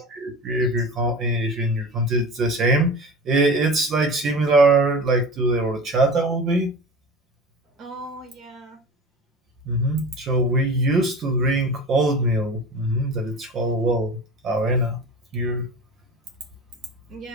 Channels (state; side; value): normal; both; correlation 0.34